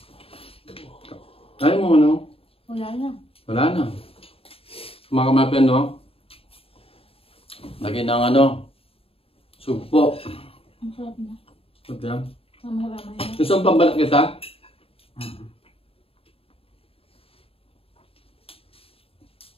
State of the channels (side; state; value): right; late; 0.27 ms